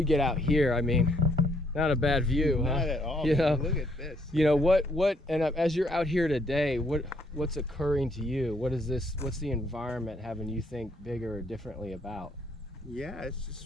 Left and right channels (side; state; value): both; normal; correlation 0.69